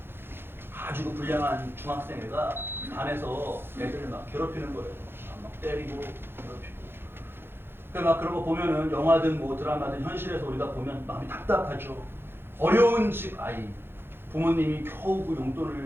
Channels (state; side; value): late; left; 0.11 ms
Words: 아주 불량한 중학생애가 반에서 애들을 막 괴롭히는 거예요. 막 때리고 괴롭히고. 막 그런 거 보면은 영화든 뭐 드라마든 현실에서 우리가 보면 마음이 답답하죠. 어려운 집 아이, 부모님이 겨우 그